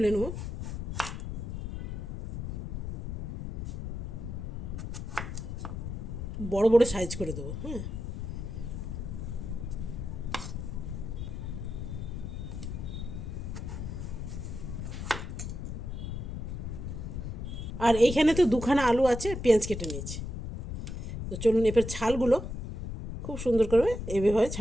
নেব। বড় বড় সাইজ করে দেবো। হ্যাঁ, আর এইখানে তো 2খানা আলু আছে, পেঁয়াজ কেটে নিয়েছি। তো চলুন, এবার ছালগুলো খুব সুন্দর করে এভাবে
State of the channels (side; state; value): left; noise; rumble, 5 dB below the sound